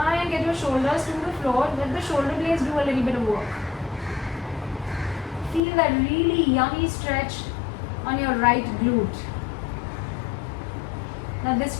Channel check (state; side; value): drops out; right; at 5.6 s